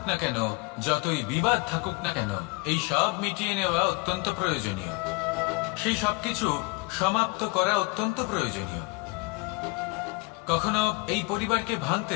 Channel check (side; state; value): right; quieter; 26.8 dB